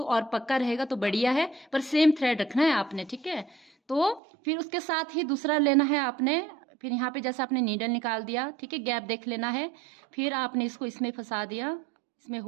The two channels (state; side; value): drops out; left; at 4.2 s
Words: और पक्का रहेगा, तो बढ़िया है, पर सेम थ्रेड रखना है आपने, ठीक है। तो फिर उसके साथ ही दूसरा लेना है आपने, फिर यहाँ पे जैसे आपने नीडल निकाल दिया, ठीक है, गैप देख लेना है, फिर आपने इसको इसमें फंसा दिया, इसमें